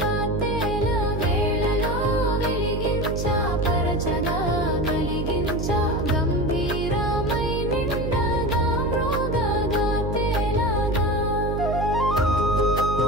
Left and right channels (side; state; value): right; noise; hum, 2 dB below the sound